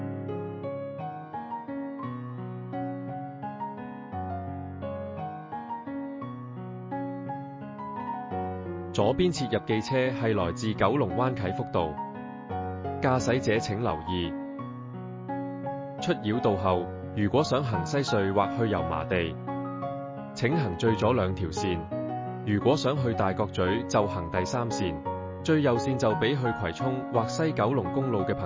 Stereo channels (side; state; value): both; identical; correlation 1.00